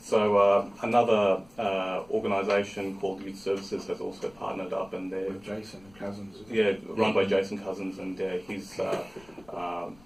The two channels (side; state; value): left; noise; rumble, 26 dB below the sound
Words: So another organisation called Youth Services has also partnered up, and they're With Jason Cousins. run by Jason Cousins, and he's